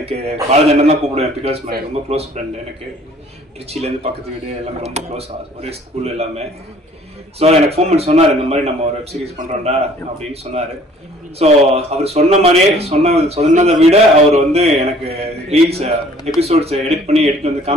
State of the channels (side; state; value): both; normal; correlation 0.55